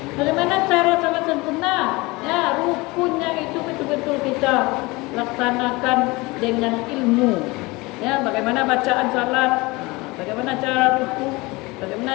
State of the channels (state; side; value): quieter; right; 23.4 dB